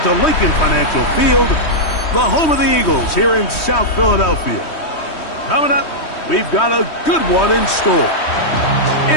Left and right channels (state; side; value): late; right; 3.2 ms